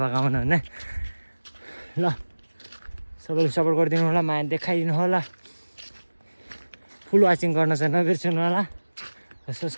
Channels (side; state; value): both; inverted; correlation -1.00